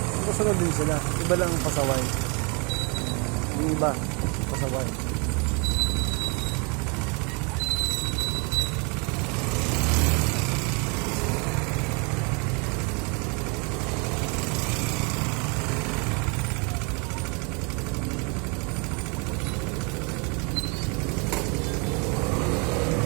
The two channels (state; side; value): quieter; left; 32.7 dB